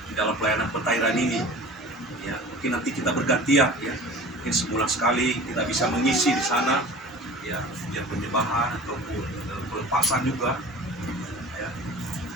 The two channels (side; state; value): both; normal; correlation 0.40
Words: di dalam pelayanan pentairan ini ya. Mungkin nanti kita bergantian ya, mungkin sebulan sekali kita bisa mengisi di sana ya, biar penyembahan ataupun pelepasan juga ya.